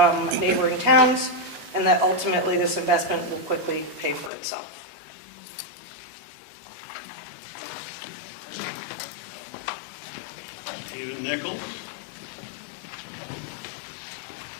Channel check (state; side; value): drops out; right; at 4.3 s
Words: neighboring towns, and that ultimately this investment will quickly pay for itself. Stephen Nichols.